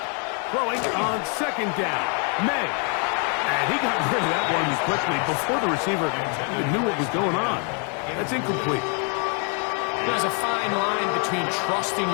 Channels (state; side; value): quieter; right; 38.9 dB